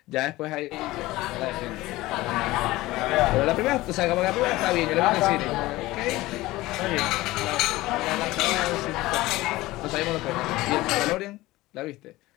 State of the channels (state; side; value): quieter; right; 18.5 dB